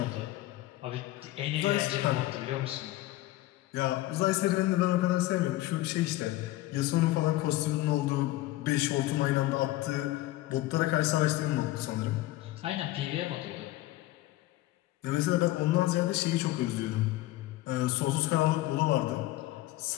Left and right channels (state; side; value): quieter; right; 16.8 dB